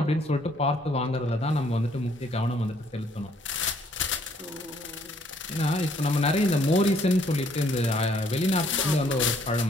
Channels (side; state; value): both; normal; correlation 0.65